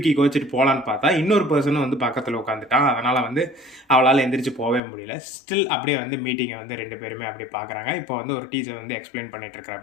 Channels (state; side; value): drops out; right; at 4.8 s